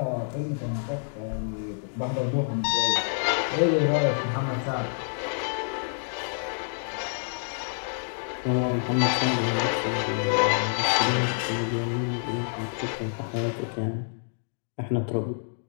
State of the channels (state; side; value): silent; right; digital silence